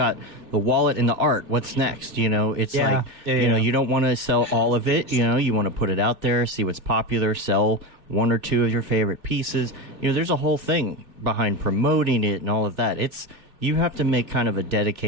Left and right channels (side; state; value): left; late; 3.1 ms